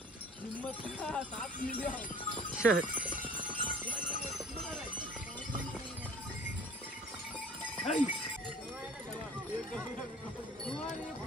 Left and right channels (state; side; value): normal; both; correlation 0.48